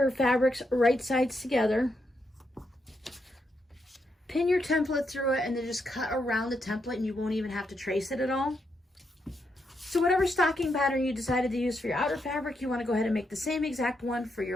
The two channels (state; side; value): normal; both; correlation 0.81